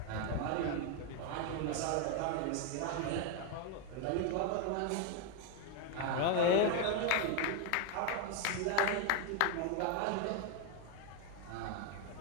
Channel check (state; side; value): different; both; correlation 0.01